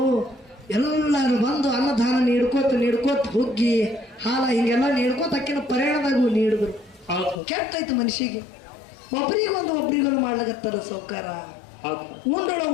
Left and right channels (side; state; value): right; drops out; at 7.4 s